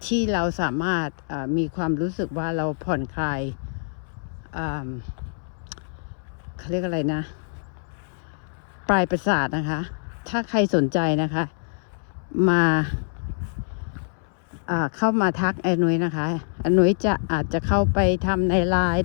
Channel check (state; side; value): silent; right; 62 dB below the other